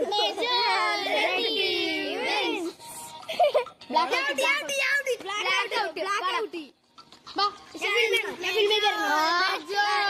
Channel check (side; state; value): both; identical; correlation 1.00